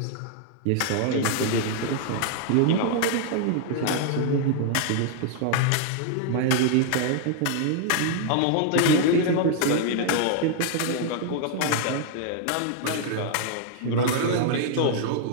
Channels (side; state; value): both; different; correlation 0.00